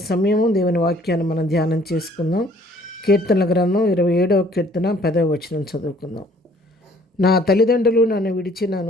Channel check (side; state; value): both; normal; correlation 0.58